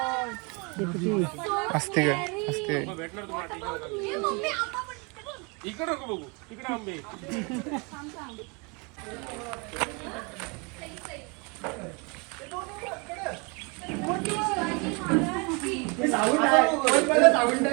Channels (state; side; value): quieter; left; 30.8 dB